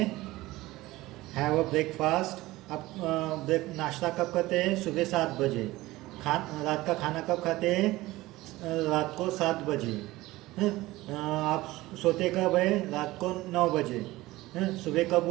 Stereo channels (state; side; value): quieter; left; 18.5 dB